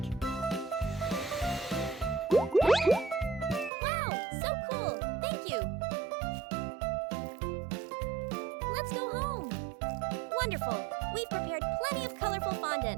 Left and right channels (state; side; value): drops out; left; at 3.7 s